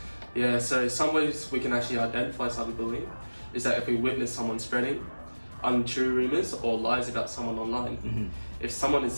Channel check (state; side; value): inverted; both; correlation -1.00